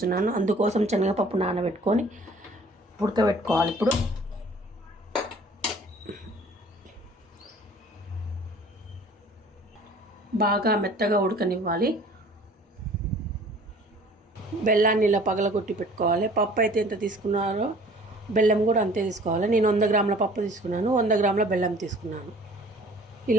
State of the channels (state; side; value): normal; both; correlation 0.50